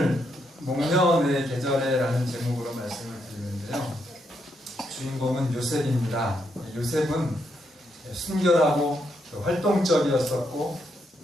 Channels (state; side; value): normal; both; correlation 0.78